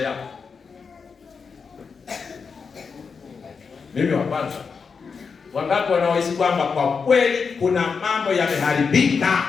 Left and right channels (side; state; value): right; quieter; 5.5 dB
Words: Mimi wa kwanza. Wangapi wanaohisi kwamba kwa kweli kuna mambo yameharibika